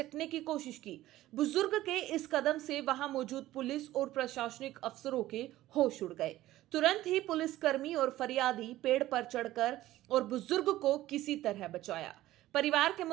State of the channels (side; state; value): left; quieter; 15.4 dB